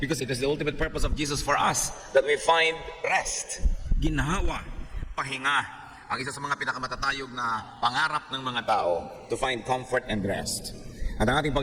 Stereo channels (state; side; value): identical; both; correlation 1.00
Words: it is the ultimate purpose of Jesus for us that we find rest, ginhawa, pahinga. Ang isa sa mga pinakamatatayog na pangarap ng mga tao, to find comfort and rest. At ang ating